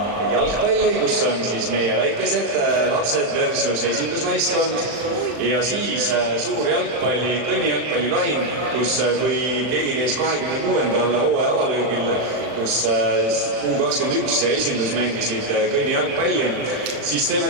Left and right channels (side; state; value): left; late; 40 ms